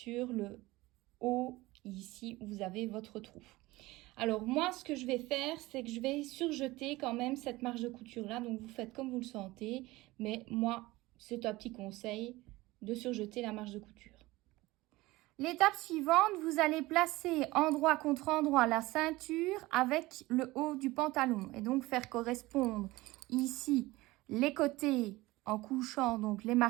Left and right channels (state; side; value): quieter; left; 19.8 dB